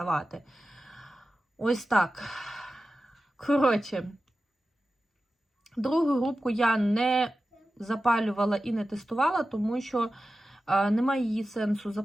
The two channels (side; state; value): both; normal; correlation 0.94